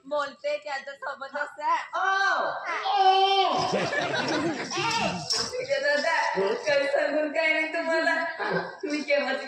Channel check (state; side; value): identical; both; correlation 1.00